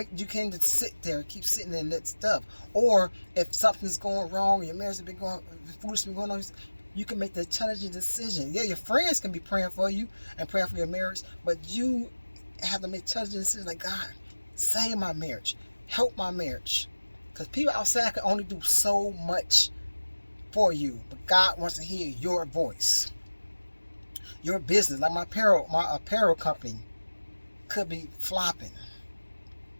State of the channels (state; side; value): inverted; both; correlation -1.00